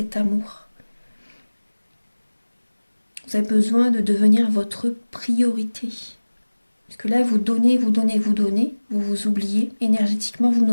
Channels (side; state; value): both; inverted; correlation -1.00